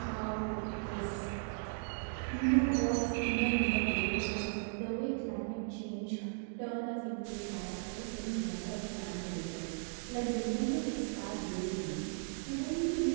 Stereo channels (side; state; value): left; silent; digital silence